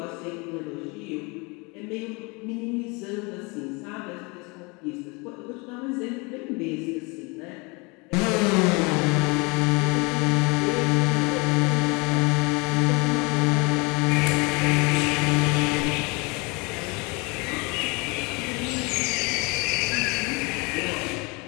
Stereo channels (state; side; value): quieter; right; 28.4 dB